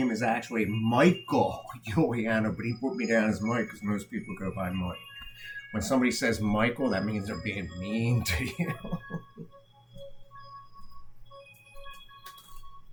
is actually Michael Juliano, but he put me down as Mike because most people go by Mike. When somebody says Michael, that means they're being mean to you.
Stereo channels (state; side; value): identical; both; correlation 1.00